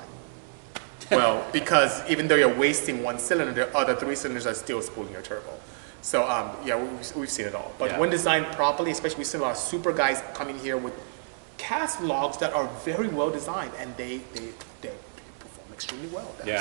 Well, because even though you're wasting one cylinder, the other 3 cylinders are still spooling your turbo. So yeah, we've seen it all. But when designed properly, especially we've seen a lot of super guys coming here with cast logs that are very well designed, and they perform extremely well.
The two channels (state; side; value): silent; left; digital silence